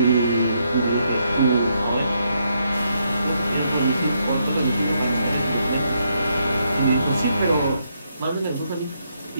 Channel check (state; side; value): inverted; both; correlation -0.77